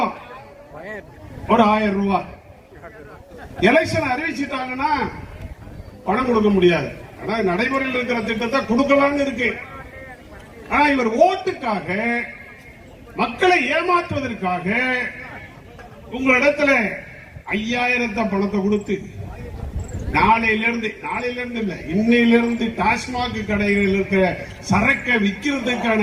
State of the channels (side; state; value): both; identical; correlation 1.00